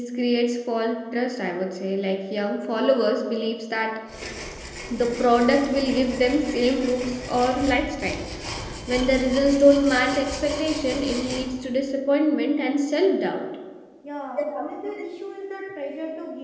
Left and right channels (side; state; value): both; identical; correlation 1.00